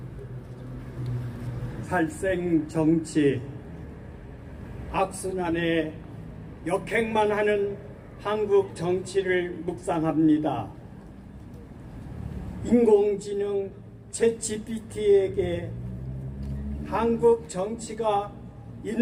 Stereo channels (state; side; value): identical; both; correlation 1.00